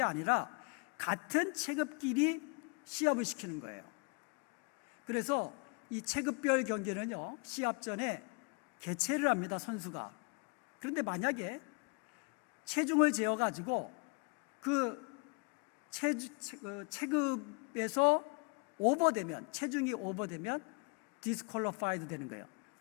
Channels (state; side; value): quieter; right; 32.9 dB